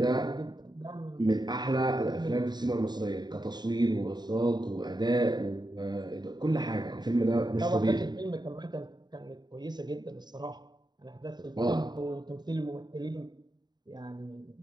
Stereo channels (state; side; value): late; left; 0.20 ms